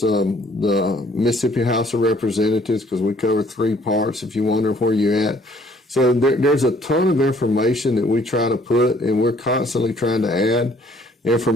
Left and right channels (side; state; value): both; normal; correlation 0.60